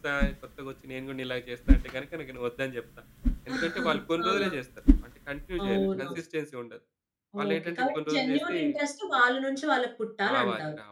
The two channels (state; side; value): identical; both; correlation 1.00